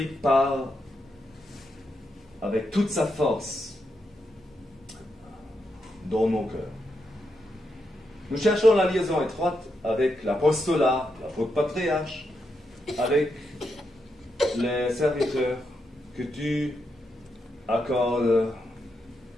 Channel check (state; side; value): normal; both; correlation 0.83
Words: parle avec toute sa force dans nos cœurs. Nous cherchons la liaison étroite avec l'apostolat, l'apôtre patriarche, avec les serviteurs, que tu accordes